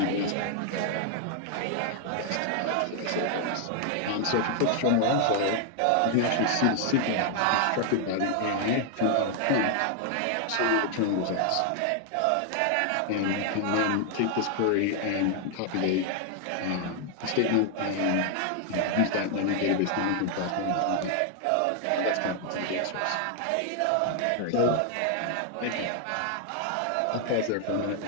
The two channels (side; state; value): both; different; correlation 0.00